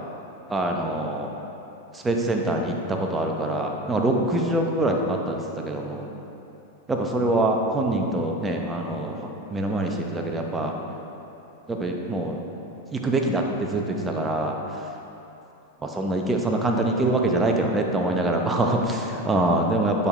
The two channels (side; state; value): both; normal; correlation 0.36